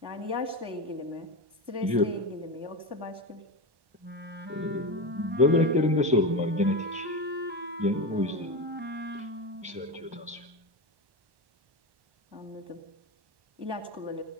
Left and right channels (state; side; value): late; left; 1.1 ms